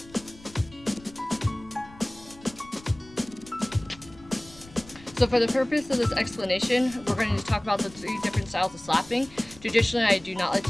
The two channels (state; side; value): noise; left; rumble, 22 dB below the sound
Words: So for the purpose of this explanation, we're going to talk about the 3 different styles of slapping. Traditionally, I do not like